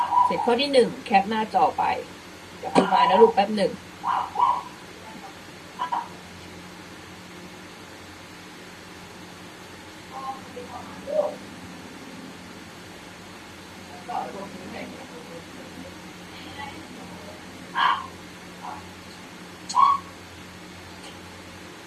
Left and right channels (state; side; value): identical; both; correlation 1.00